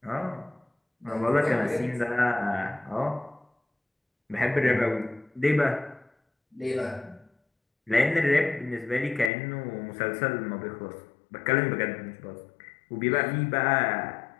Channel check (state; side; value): drops out; right; at 9.3 s